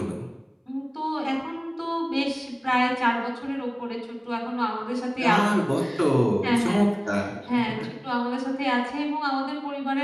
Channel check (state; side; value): identical; both; correlation 1.00